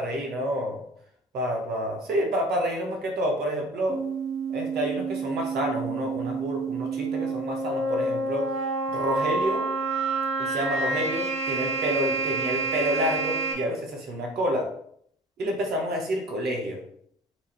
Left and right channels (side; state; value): both; normal; correlation 0.43